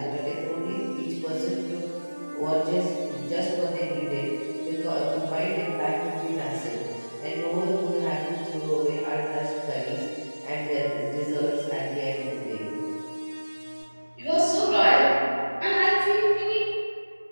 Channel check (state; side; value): inverted; both; correlation -1.00